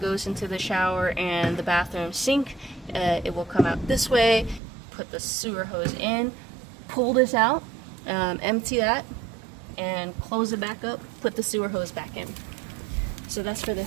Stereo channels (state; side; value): drops out; left; at 4.6 s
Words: goes into the shower and the bathroom sink, it will come out this way. Put the sewer hose in, pull this out, empty that, and close it back up. Put the sewer hose back in. So that's for the